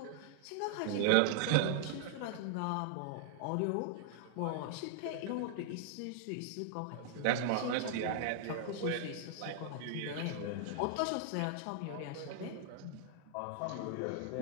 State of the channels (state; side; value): different; both; correlation -0.01